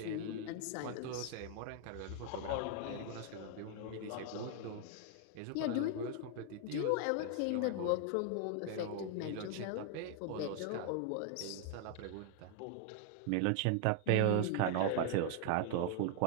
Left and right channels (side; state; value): both; different; correlation 0.00